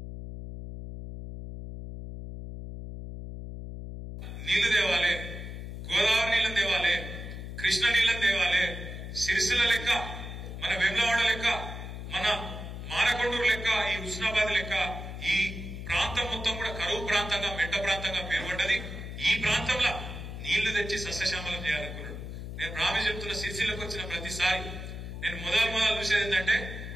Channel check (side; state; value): left; noise; hum, 8 dB below the sound